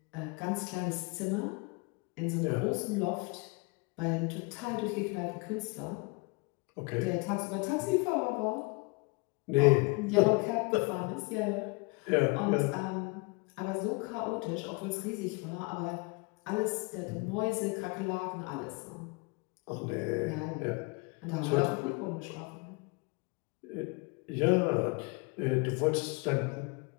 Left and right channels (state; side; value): quieter; right; 29.2 dB